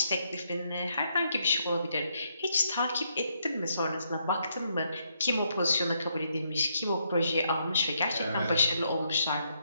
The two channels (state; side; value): inverted; both; correlation -0.76